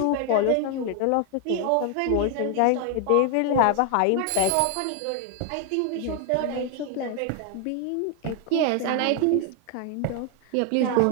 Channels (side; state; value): both; different; correlation 0.00